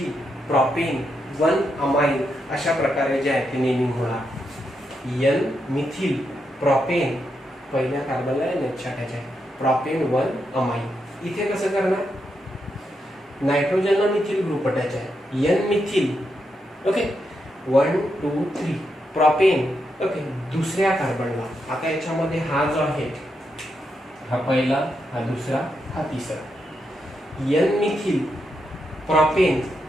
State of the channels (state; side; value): normal; both; correlation 0.83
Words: प्रोपेन 1 अमाइन अशा प्रकारे जे आहे ते नेमिंग होणार. N मिथिल प्रोपेन पहिल्या कार्बनला NH अटॅच आहे, प्रोपेन 1 अमाइन. इथे कसं करणार नायट्रोजनला मिथिल ग्रुप अटॅच आहे, N methyl. Okay, 1 2 3 propane. Okay, दुसऱ्या कार्बनला. आता याच्यामध्ये हा जो आहे हा पहिला, हा दुसरा, हा तिसरा. N methyl propane.